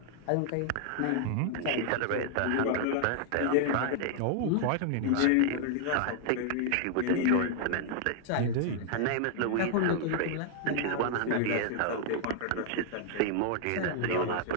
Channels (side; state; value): both; different; correlation 0.00